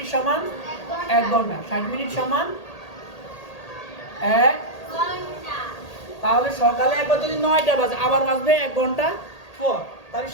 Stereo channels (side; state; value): right; late; 1.8 ms